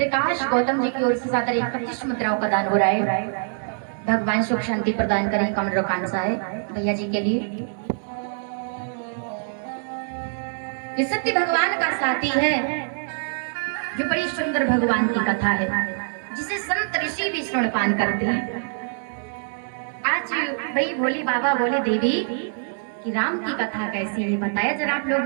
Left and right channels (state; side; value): silent; left; digital silence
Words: गौतम जी की ओर से 25 मुद्राओं का दान हो रहा है। भगवान सुख शांति प्रदान करें, कमल कांसा है भैया जी के लिए। ये सत्य भगवान का साथी है, जो बड़ी सुंदर भगवान की कथा है, जिसे संत ऋषि भी श्रवणपान करते हैं। आज भाई भोले बाबा बोले देवी कि राम की कथा कैसी है, बताया जरा आप